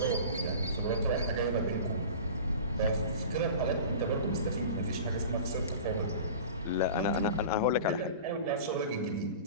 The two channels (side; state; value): both; inverted; correlation -0.37